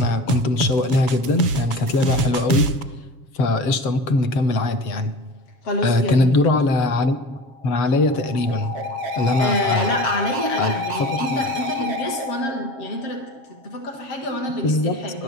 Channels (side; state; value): right; late; 7.4 ms